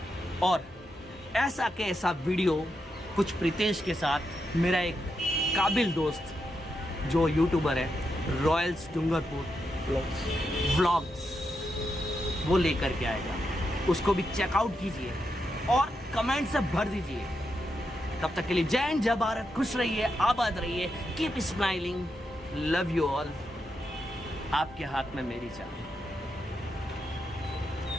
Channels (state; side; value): normal; both; correlation 0.84